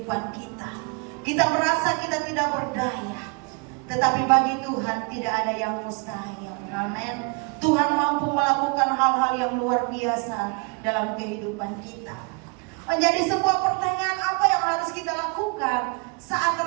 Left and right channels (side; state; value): left; quieter; 32.9 dB